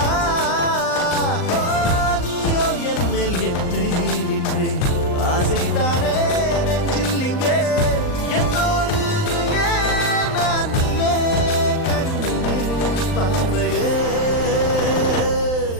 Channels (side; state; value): right; late; 39 ms